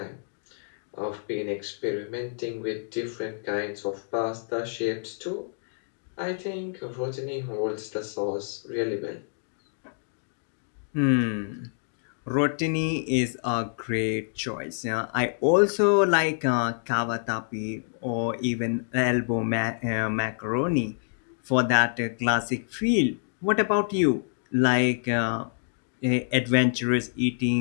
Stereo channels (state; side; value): silent; right; digital silence